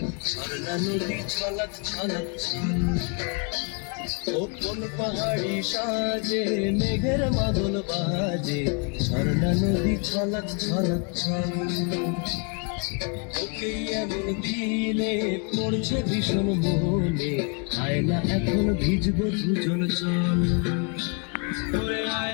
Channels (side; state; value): right; quieter; 35.7 dB